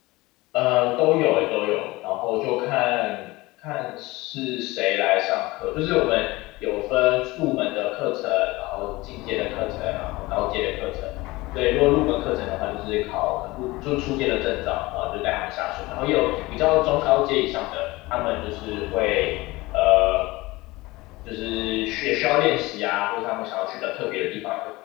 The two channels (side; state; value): right; quieter; 21.0 dB